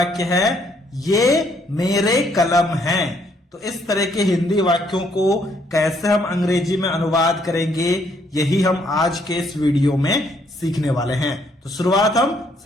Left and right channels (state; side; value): normal; both; correlation 0.69